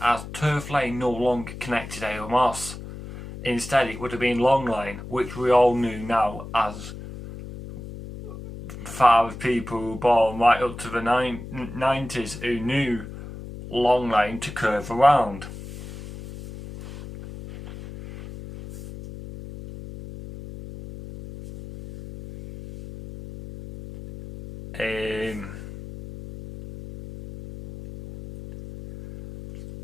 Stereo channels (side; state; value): left; noise; hum, 12 dB below the sound